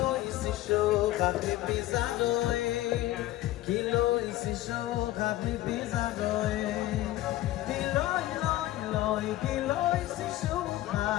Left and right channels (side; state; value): right; quieter; 15.7 dB